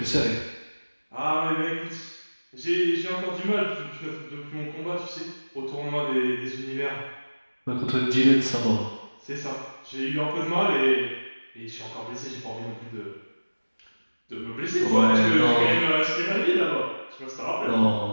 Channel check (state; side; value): inverted; both; correlation -1.00